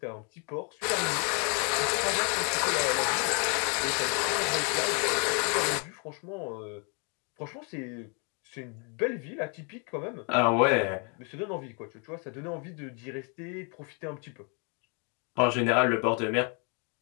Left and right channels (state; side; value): quieter; right; 36.6 dB